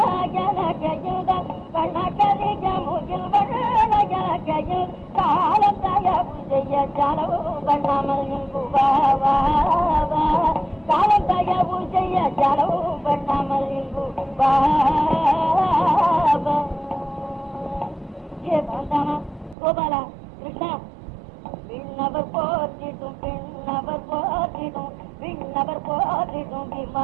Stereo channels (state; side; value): drops out; left; at 19.6 s